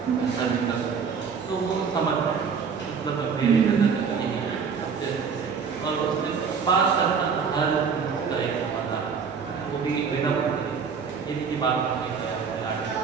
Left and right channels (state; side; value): quieter; left; 6.1 dB